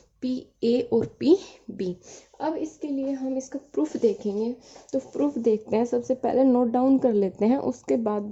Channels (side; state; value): both; identical; correlation 1.00